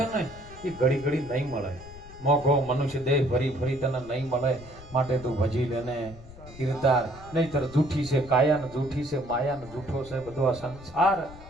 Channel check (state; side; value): noise; left; rumble, 18 dB below the sound